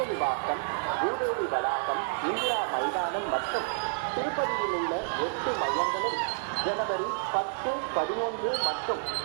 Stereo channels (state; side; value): silent; left; digital silence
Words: பூதேவி வளாகம், இந்திரா மைதானம் மற்றும் திருப்பதியில் உள்ள 8 மையங்களில் ஜனவரி 10, 11 மற்றும்